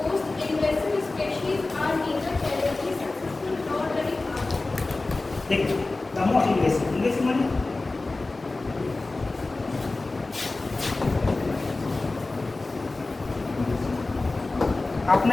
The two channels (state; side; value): quieter; right; 3.3 dB